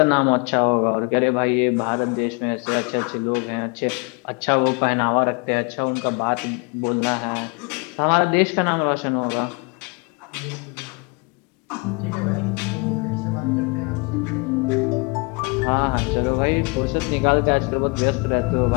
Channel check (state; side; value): quieter; right; 30.9 dB